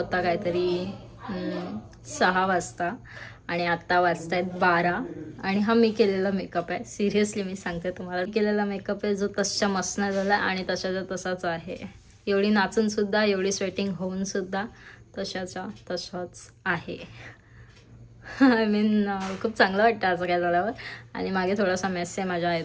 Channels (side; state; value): both; identical; correlation 1.00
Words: काहीतरी 6 वाजता आणि आत्ता वाजतायत 12 आणि हा मी केलेला मेकअप आहे. सिरियसली मी सांगते तुम्हाला, केलेला मेकअप आहे जो तसच्या मस्त नाही झाला आणि तशाचा तसाच आहे. एवढी नाचून सुद्धा, एवढी स्वेटिंग होऊन सुद्धा तशाचा तसाच आहे. आय मीन खूप चांगलं वाटतं असं काय झाल्यावर. आणि मागे थोडासा मेस आहे माझ्या